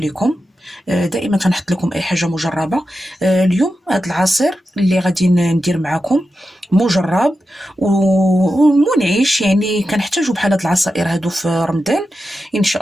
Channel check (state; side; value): normal; both; correlation 0.90